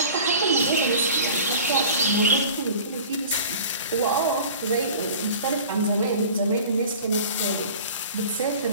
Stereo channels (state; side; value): inverted; both; correlation -0.41